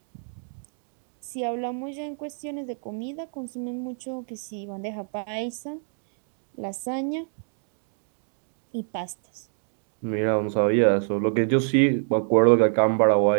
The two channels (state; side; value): silent; left; 58 dB below the other